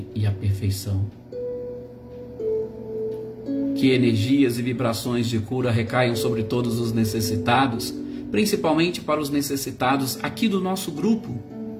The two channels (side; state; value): both; identical; correlation 1.00